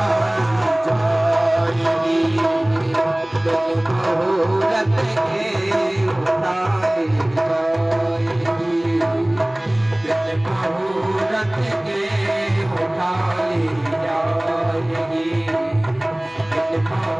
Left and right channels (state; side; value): noise; right; hum, 30 dB below the sound